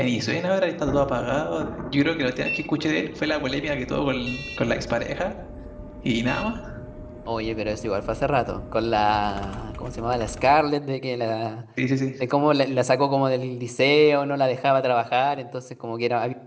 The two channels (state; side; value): identical; both; correlation 1.00